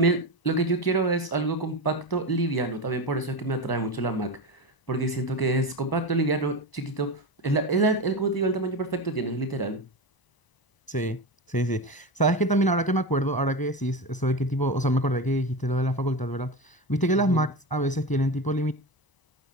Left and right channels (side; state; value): right; late; 1.0 ms